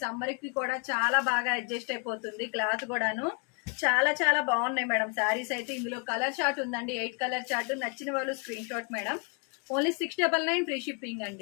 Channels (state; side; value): quieter; right; 35.1 dB